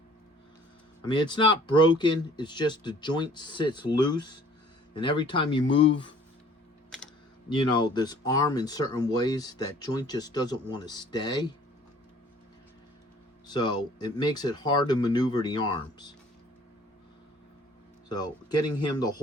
I mean, it's not broken. It's just the joint sits loose. And every time you move, you know, this arm in certain ways, that joint just doesn't want to stay. So it makes it hard to maneuver the arms. So getting him to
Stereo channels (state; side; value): normal; both; correlation 0.54